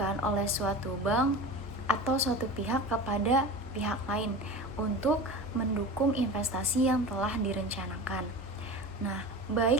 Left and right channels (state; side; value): normal; both; correlation 0.32